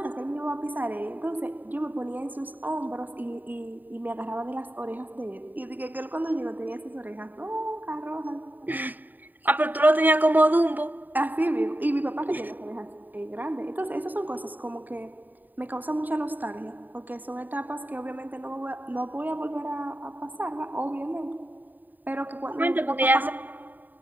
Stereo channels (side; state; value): left; late; 0.088 ms